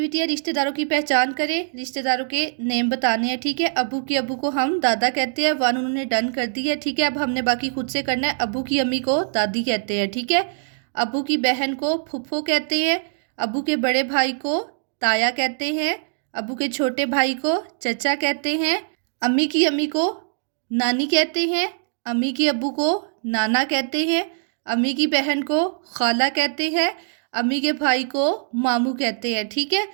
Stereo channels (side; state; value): left; silent; digital silence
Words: है रिश्तेदारों की पहचान करें, रिश्तेदारों के नेम बताने हैं। ठीक है, अबू की अबू को हम दादा कहते हैं, वन उन्होंने डन कर दी है। ठीक है, अब हमने बाकी खुद से करना है। अबू की अम्मी को दादी कहते हैं। ठीक है, अबू की बहन को फुफ्फो कहते हैं, अबू के बड़े भाई को ताया कहते हैं, अबू के छोटे भाई को चचा कहते हैं, अम्मी की अम्मी को नानी कहते हैं, अम्मी की अब्बू को नाना कहते हैं, अम्मी की बहन को खाला कहते हैं, अम्मी के भाई को मामू कहते हैं। ठीक है,